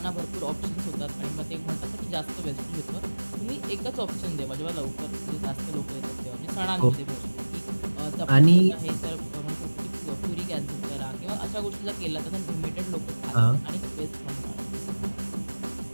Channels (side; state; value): both; inverted; correlation -1.00